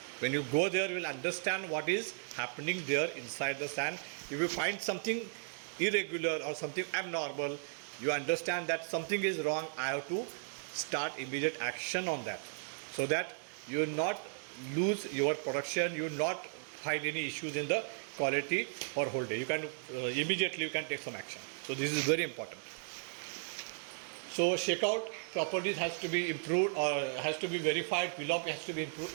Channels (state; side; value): silent; left; digital silence